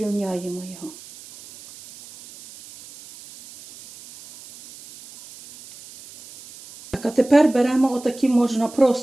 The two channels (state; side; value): noise; right; hiss, 19 dB below the sound